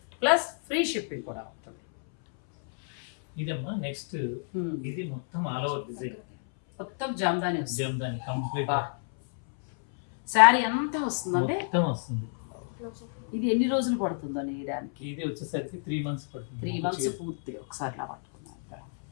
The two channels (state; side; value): silent; right; 58 dB below the other